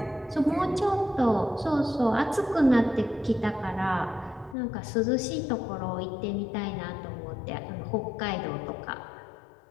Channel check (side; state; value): right; drops out; at 4.5 s